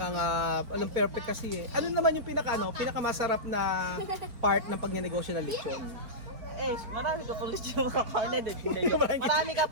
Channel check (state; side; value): late; left; 4.4 ms